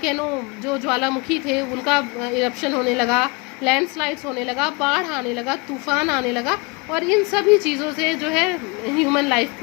जो ज्वालामुखी थे उनका इरप्शन होने लगा, लैंडस्लाइड्स होने लगा, बाढ़ आने लगा, तूफान आने लगा, और इन सभी चीज़ों से जो है ह्यूमन लाइफ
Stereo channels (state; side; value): quieter; right; 27.9 dB